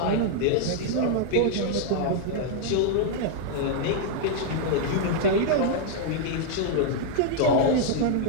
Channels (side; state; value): both; different; correlation -0.01